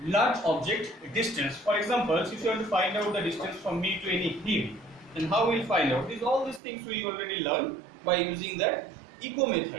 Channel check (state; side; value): drops out; left; at 6.6 s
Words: large object distance. For example, if you want to find out the distance from me to any hill, then how we will find out? All these things we already learned by using the echo